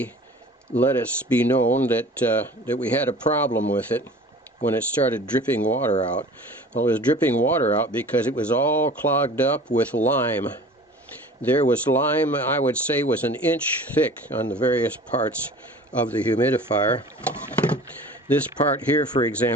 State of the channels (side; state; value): both; normal; correlation 0.43